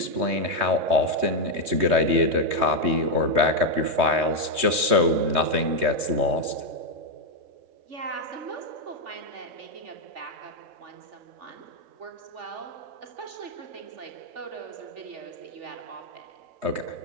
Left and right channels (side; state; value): left; late; 3.2 ms